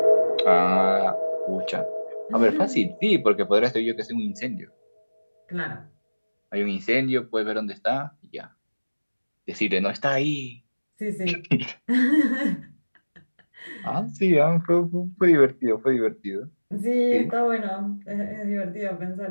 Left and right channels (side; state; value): both; inverted; correlation -1.00